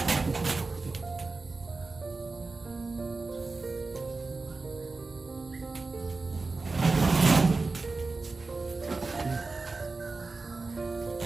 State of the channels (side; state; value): left; quieter; 3.8 dB